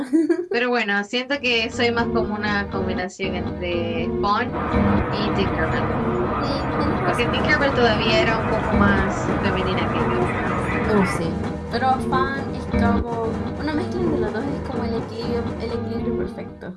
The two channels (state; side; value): identical; both; correlation 1.00